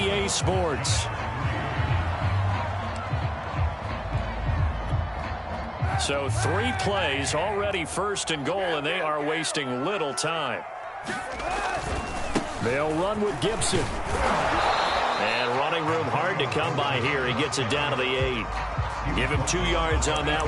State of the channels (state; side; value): identical; both; correlation 1.00